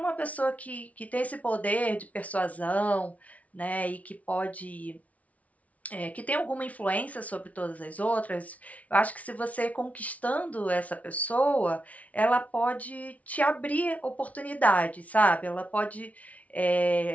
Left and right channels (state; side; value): late; right; 0.068 ms